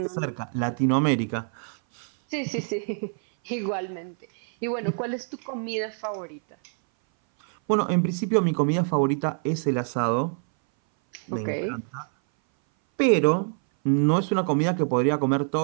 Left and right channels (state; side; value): silent; left; 59 dB below the other